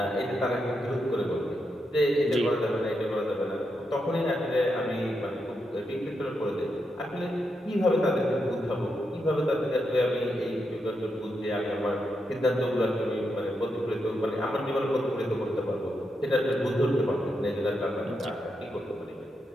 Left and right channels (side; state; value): both; normal; correlation 0.84